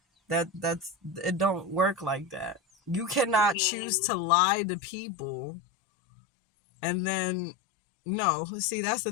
That's it don't work like that. You cannot choose Mm. to lie to people and then no, see that's the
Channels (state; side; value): drops out; right; at 3.6 s